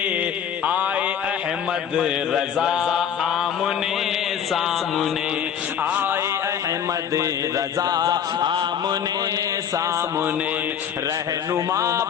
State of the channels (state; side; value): quieter; right; 8.5 dB